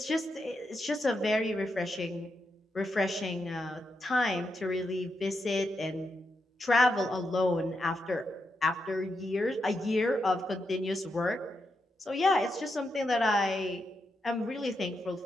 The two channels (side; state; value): both; normal; correlation 0.84